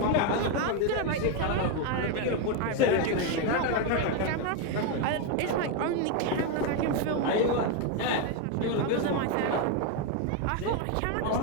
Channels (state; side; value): different; both; correlation 0.02